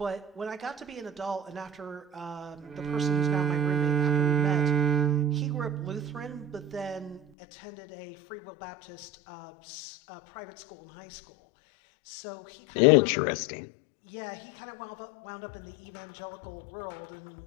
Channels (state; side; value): drops out; right; at 7.3 s